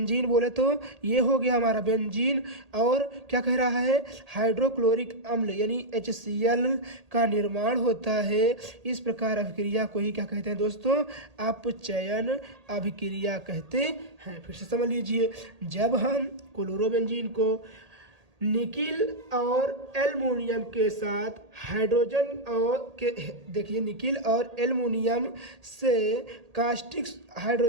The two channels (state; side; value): late; left; 1.8 ms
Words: बोले तो ये हो गया हमारा बेंजीन। और क्या कह रहा है, हाइड्रोक्लोरिक अम्ल यानी HCl का निर्माण होता है। इस प्रकार अभिक्रिया को ही क्या कहते हैं दोस्तों, अपचयन अभिक्रिया कहते हैं। फिर से समझ लीजिए, जब हम क्लोरोबेंजीन को निकिल और एल्युमिनियम के साथ हाइड्रोजन और के देखिए निकिल और एल्युमिनियम से कास्टिक